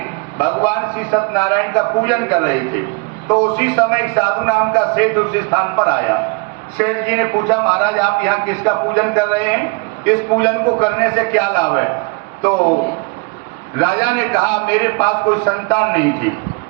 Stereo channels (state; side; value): quieter; left; 31.6 dB